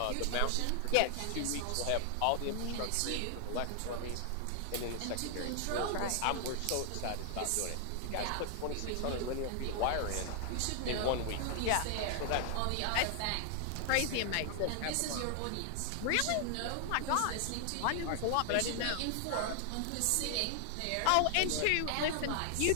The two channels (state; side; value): different; both; correlation 0.00